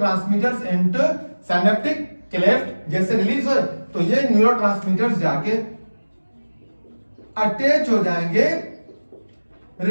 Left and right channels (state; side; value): inverted; both; correlation -1.00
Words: इनटू सिनेप्टिक क्लेफ्ट। जैसे रिलीज हो तो ये न्यूरोट्रांसमीटर्स जाके अटैच हो जाएंगे